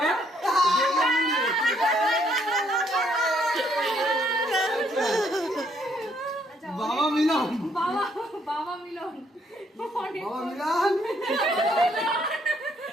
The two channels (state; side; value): normal; both; correlation 0.69